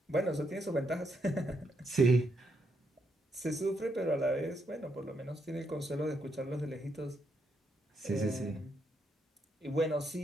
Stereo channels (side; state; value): both; normal; correlation 0.78